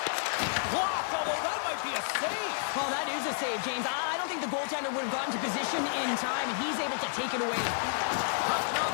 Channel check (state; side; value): silent; right; digital silence